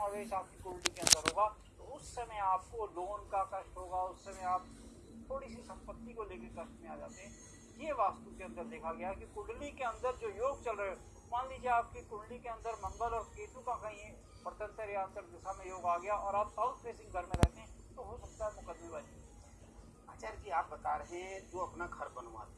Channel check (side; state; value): both; identical; correlation 1.00